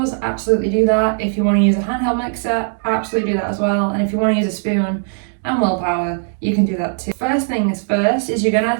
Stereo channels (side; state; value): left; silent; 67 dB below the other